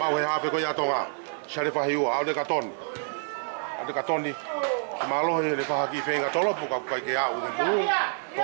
he hape ko ya toa. Sharifa hiu au de katon. De katon ni. Malo he le fa ki fe ga tolo ka ka ke a o bu. Ko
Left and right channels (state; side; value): silent; left; 60 dB below the other